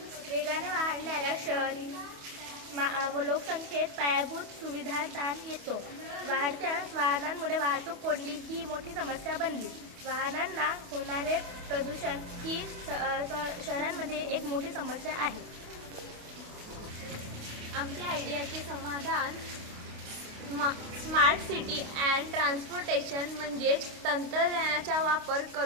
वेगाने वाढणाऱ्या शहरी लोकसंख्येत पायाभूत सुविधा ताण येतो. वाढत्या वाहनांमुळे वाहतूक कोंडी ही मोठी समस्या बनली. वाहनांना होणारे प्रदूषण ही शहरांमध्ये एक मोठी समस्या आहे. आमच्या आयडियाचे समाधान स्मार्ट सिटी अँड ट्रान्सपोर्टेशन म्हणजेच तंत्रज्ञानाचा वापर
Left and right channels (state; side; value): late; left; 28 ms